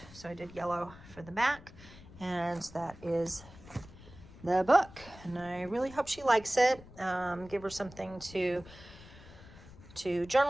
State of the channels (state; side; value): noise; left; rumble, 19 dB below the sound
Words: so I did yellow for the back, and that is the book. And I really hope she likes it. Give her something to